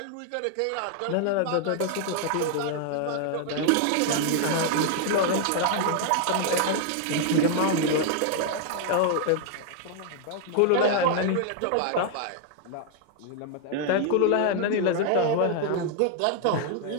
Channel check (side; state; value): both; different; correlation 0.00